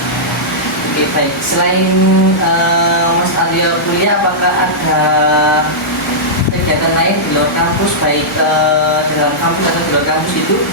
Oke, baik. Selain Mas Aryo kuliah, apakah ada kegiatan lain di luar kampus, baik di dalam kampus atau di luar kampus itu?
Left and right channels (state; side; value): normal; both; correlation -0.13